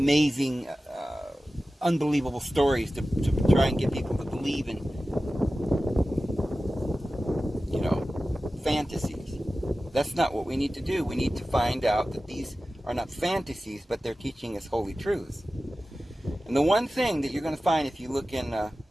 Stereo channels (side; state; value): both; normal; correlation 0.95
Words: unbelievable stories to try and get people to believe in, fantasies. That's not what we need to do. We need to find out that these are not fantasies, but they're teaching us holy truths. And the one thing that you're going to find if you look in the